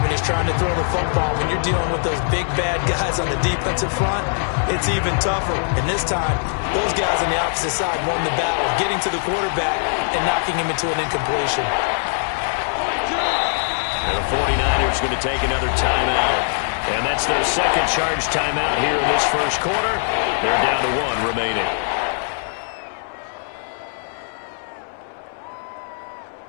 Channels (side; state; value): right; silent; digital silence